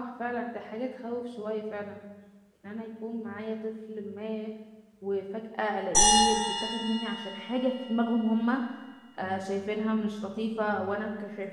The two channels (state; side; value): identical; both; correlation 1.00